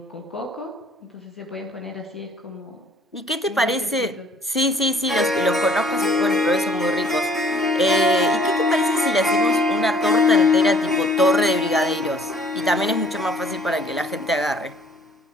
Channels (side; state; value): both; normal; correlation 0.56